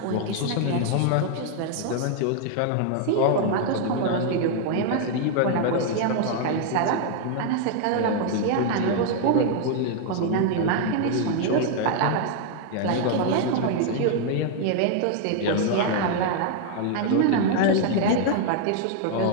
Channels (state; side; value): different; both; correlation 0.00